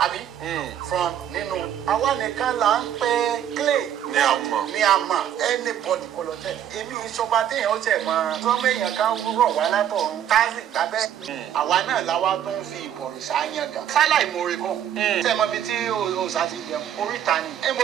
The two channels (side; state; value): left; quieter; 10.2 dB